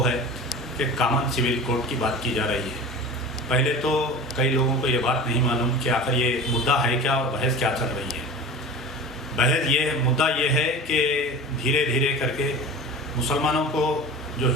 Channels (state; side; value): normal; both; correlation 0.34